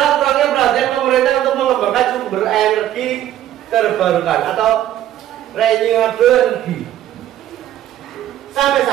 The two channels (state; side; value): quieter; left; 12.2 dB